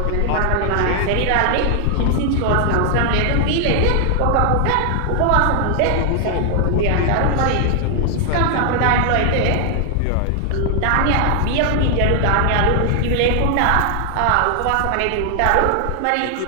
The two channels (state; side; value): different; both; correlation 0.00